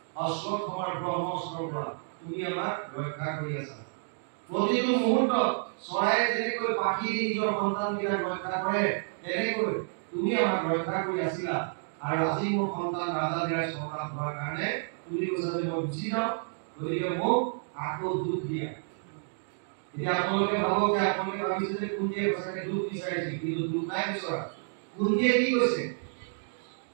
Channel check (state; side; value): silent; left; digital silence